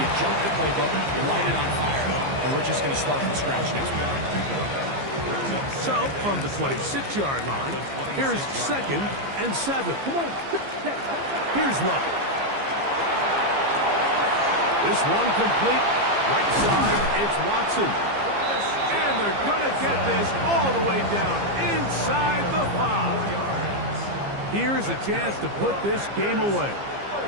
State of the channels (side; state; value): left; late; 15 ms